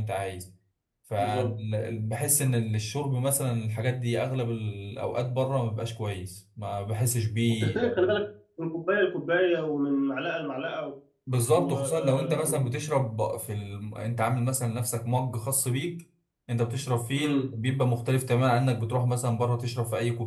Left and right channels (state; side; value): identical; both; correlation 1.00